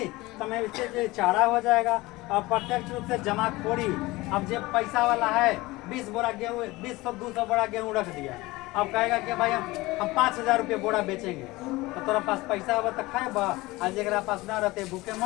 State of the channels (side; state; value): right; quieter; 20.6 dB